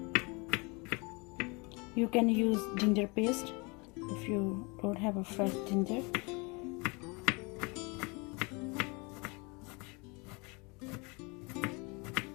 You can use ginger paste if you don't have a fresh ginger.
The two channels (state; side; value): quieter; right; 29.1 dB